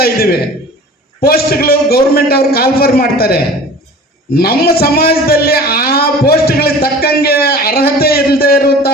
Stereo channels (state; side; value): normal; both; correlation 0.42